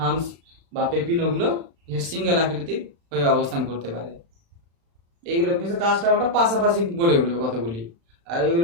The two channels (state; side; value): late; left; 35 ms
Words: বা পেপিনোগুলো সিঙ্গেল আকৃতির হয়ে অবস্থান করতে পারে। এইগুলো বিশেষ কাস্ট টাওয়ারটা পাশাপাশি গড়ে উঠবে কতগুলি, আর